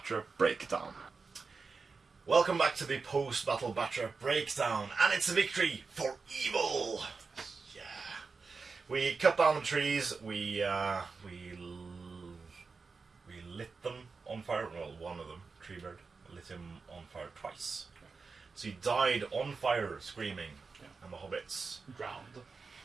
breakdown. Welcome back to the post-battle Batra breakdown, and it's a victory for evil. Yeah, we cut down the trees. We lit them on fire. Well, one of them, Treebeard, lit him on fire twice. So he died on fire, screaming, and the hobbits drowned.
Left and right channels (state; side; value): quieter; left; 4.6 dB